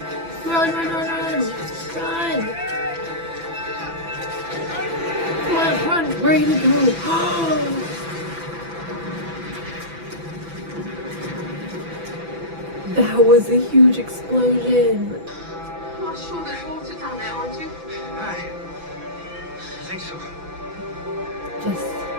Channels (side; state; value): left; late; 6.0 ms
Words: Run, run, run, run! Run! Come on, run! Where are you gonna go? That was a huge explosion. You're sure there's water down there, aren't you? Aye. I think so. Just...